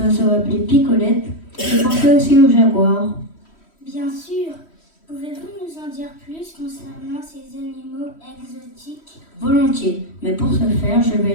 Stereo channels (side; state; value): right; late; 3.1 ms